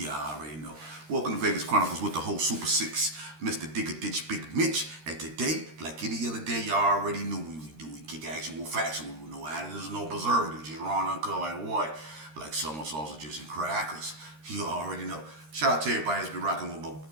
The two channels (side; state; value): left; late; 13 ms